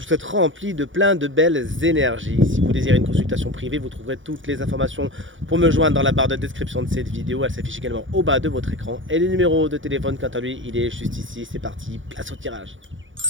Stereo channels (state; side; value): late; left; 0.56 ms